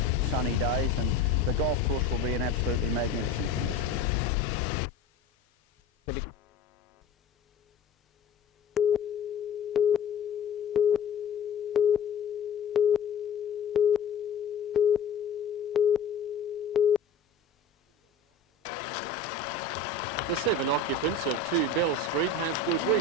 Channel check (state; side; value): quieter; right; 4.4 dB